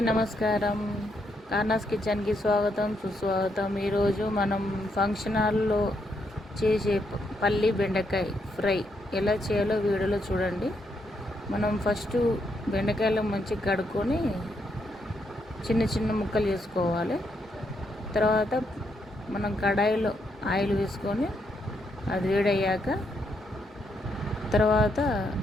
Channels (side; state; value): both; normal; correlation 0.78